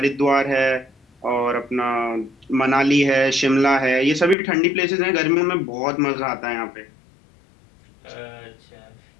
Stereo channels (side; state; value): right; drops out; at 4.4 s